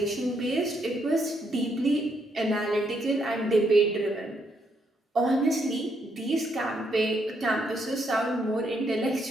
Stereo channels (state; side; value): normal; both; correlation 0.75